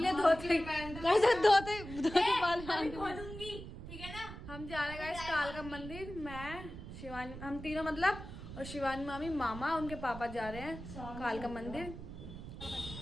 ले धोते बाल खोलूंगी, ठीक है ना। हम जा रहे हैं कालका मंदिर, मैं शिवानी, हम तीनों मतलब, और शिवानी मामी, मामा, उनके पापा जा रहे हैं कालका मंदिर।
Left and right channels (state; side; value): noise; right; rumble, 11 dB below the sound